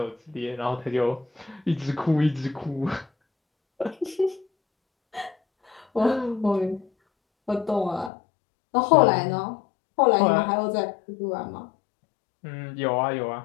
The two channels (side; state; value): right; drops out; at 8.1 s